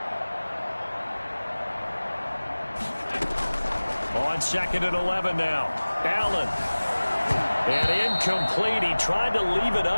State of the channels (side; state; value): both; inverted; correlation -1.00